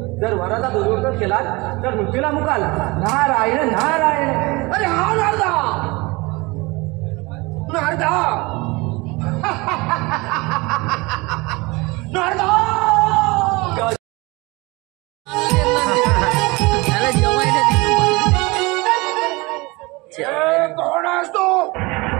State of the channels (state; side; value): quieter; left; 24.2 dB